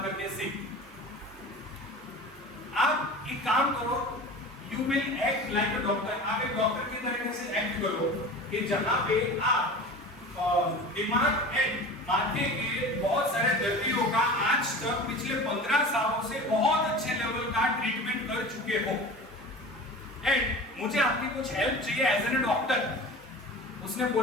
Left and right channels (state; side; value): noise; right; hum, 26 dB below the sound